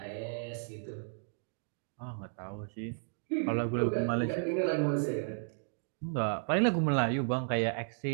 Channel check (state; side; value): silent; left; digital silence